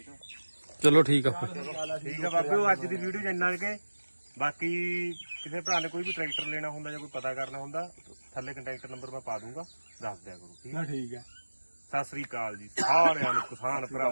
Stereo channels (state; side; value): inverted; both; correlation -1.00